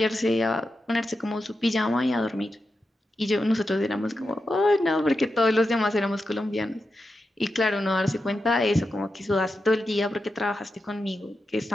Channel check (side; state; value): both; normal; correlation 0.89